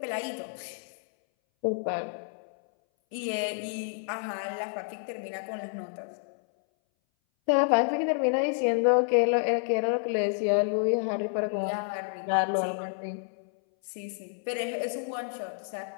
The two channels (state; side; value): silent; right; 58 dB below the other